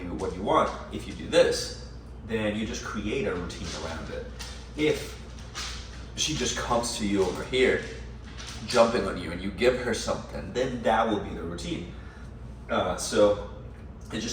want if you do this. Then you just create a routine around it. If she just comes to you over here, jumping on you, and you give her something, then that will be the routine. So it's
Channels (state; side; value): identical; both; correlation 1.00